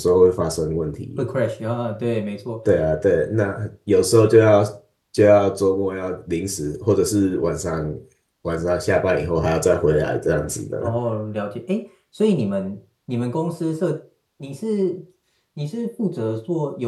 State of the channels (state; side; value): identical; both; correlation 1.00